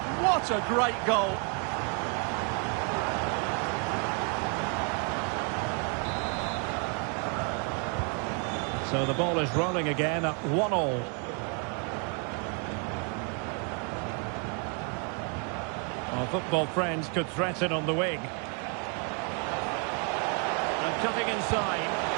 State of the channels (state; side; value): quieter; left; 37.3 dB